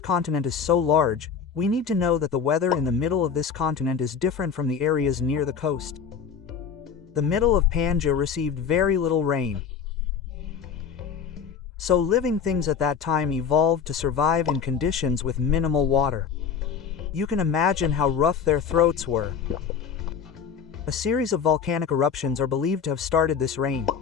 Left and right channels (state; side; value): quieter; right; 6.8 dB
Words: is so large, we need to know that the weather in the middle of this continent is different from the areas near the coast. The middle of Pangea received very little rain. So living things at that time evolved to survive in conditions with minimal water. You can imagine how rough their throats were. A series of volcanic eruptions are believed to have started this rain.